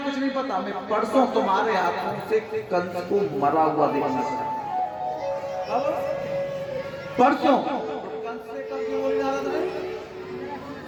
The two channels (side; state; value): both; identical; correlation 1.00